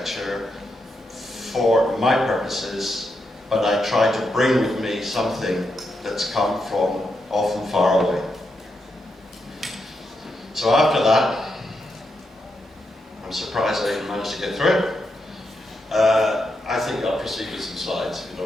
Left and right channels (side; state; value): both; normal; correlation 0.83